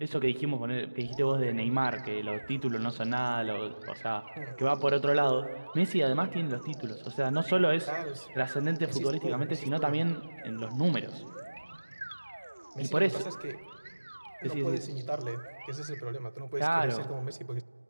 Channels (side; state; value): both; inverted; correlation -1.00